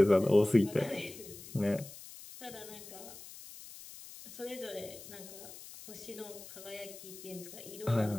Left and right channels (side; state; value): left; noise; hiss, 15 dB below the sound